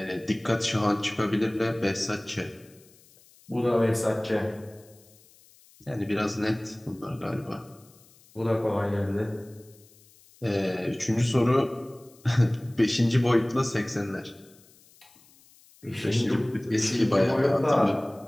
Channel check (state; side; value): noise; left; hiss, 28 dB below the sound